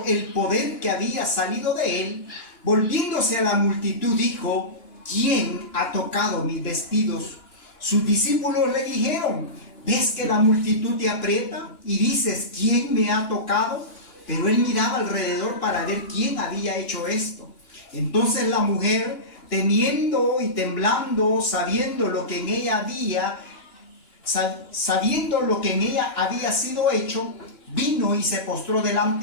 el poder que había salido de él, volviéndose a la multitud, dijo: ¿quién ha tocado mis vestidos? Sus discípulos le dijeron: ¿ves que la multitud te aprieta y dices, ¿quién me ha tocado? Pero él miraba alrededor para ver quién había hecho esto. Entonces la mujer, temiendo y temblando, sabiendo lo que en ella había sido hecho, vino y se postró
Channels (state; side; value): late; right; 2.9 ms